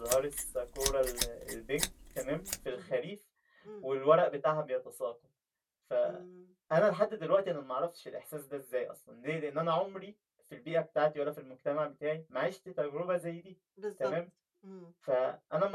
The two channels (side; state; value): both; identical; correlation 1.00